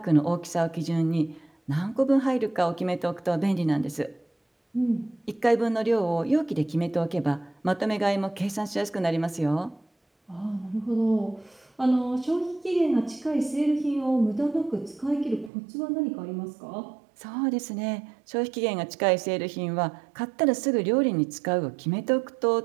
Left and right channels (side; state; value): left; drops out; at 15.5 s